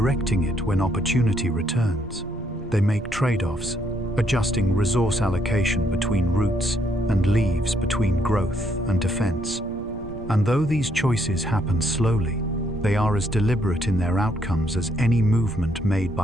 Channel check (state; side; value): noise; right; rumble, 15 dB below the sound